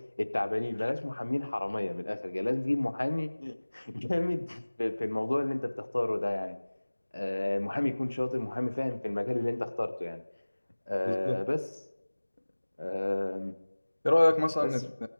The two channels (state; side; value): inverted; both; correlation -1.00